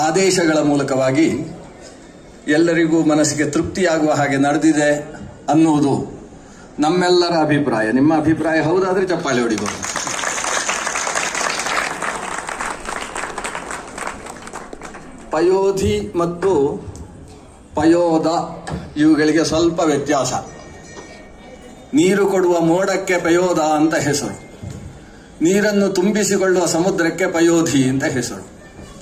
ಆದೇಶಗಳ ಮೂಲಕವಾಗಿ ಎಲ್ಲರಿಗೂ ಮನಸ್ಸಿಗೆ ತೃಪ್ತಿಯಾಗುವ ಹಾಗೆ ನಡೆದಿದೆ ಅನ್ನುವುದು ನಮ್ಮೆಲ್ಲರ ಅಭಿಪ್ರಾಯ. ನಿಮ್ಮ ಅಭಿಪ್ರಾಯ ಹೌದಾದ್ರೆ ಚಪ್ಪಾಳೆ ಹೊಡಿಬಹುದು. ಪಯೋಧಿ ಮತ್ತು ಪಯೋದ ಇವುಗಳಿಗೆ ಸ್ವಲ್ಪ ವ್ಯತ್ಯಾಸ. ನೀರು ಕೊಡುವ ಮೋಡಕ್ಕೆ ಪಯೋದ ಅಂತ ಹೆಸರು, ನೀರನ್ನು ತುಂಬಿಸಿಕೊಳ್ಳುವ ಸಮುದ್ರಕ್ಕೆ ಪಯೋಧಿ ಅಂತ ಹೆಸರು.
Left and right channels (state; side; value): identical; both; correlation 1.00